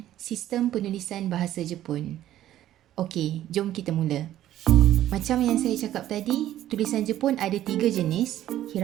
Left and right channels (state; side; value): quieter; left; 12.8 dB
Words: sistem penulisan bahasa Jepun. Okey, jom kita mula. Macam yang saya cakap tadi, tulisan Jepun ada 3 jenis,